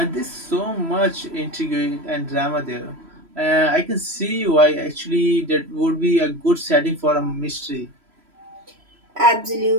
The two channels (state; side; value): late; left; 3.0 ms